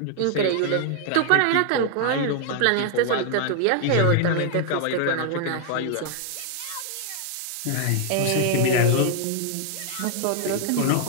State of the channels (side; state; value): both; different; correlation 0.00